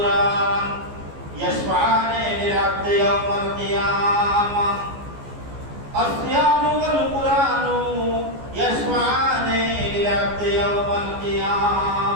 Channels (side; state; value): left; late; 14 ms